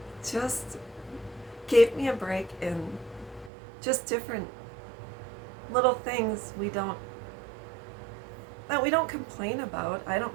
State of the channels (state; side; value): drops out; left; at 3.5 s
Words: just gave me a break in just different little things that we don't complain about. I